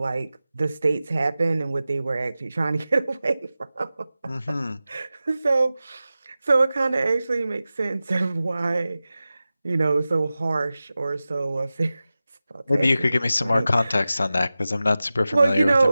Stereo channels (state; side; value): inverted; both; correlation -0.95